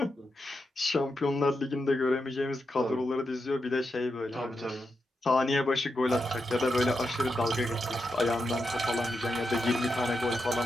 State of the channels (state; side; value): normal; both; correlation 0.86